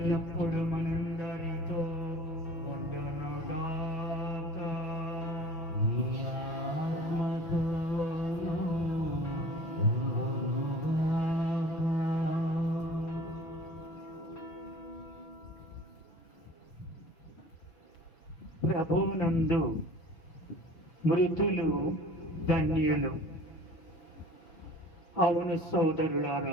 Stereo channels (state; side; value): late; right; 6.4 ms